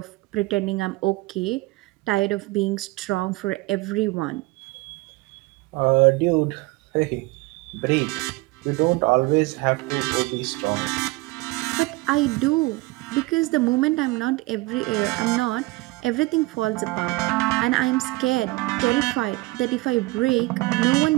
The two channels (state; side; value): quieter; left; 21.9 dB